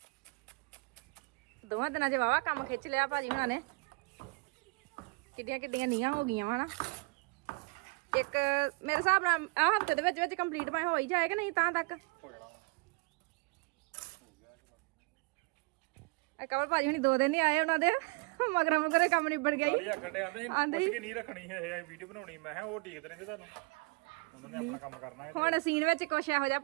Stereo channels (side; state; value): left; quieter; 28.8 dB